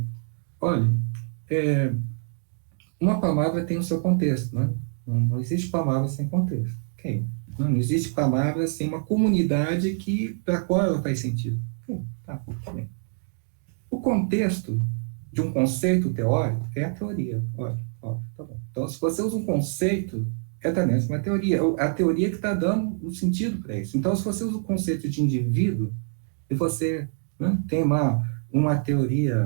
olha, uma palavra tem o seu contexto, né? Não existe palavra sem contexto. Okay. Não existe palavra sem uma comunidade para a qual ela faz sentido. Okay. Tá bem. O contexto de um conceito teórico é a teoria. Olha, tá bom. Então, se você usa um conceito, também uma teoria. A teoria que está dando o sentido para isso. Então, se você usa o conceito de indivíduo, e você, né, tem uma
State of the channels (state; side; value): silent; left; 59 dB below the other